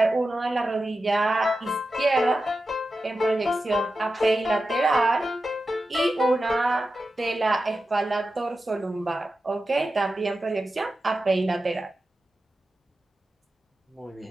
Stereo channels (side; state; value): both; normal; correlation 0.92